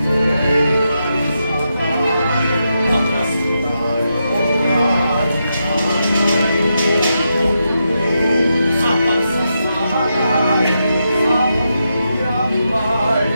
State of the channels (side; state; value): both; inverted; correlation -0.85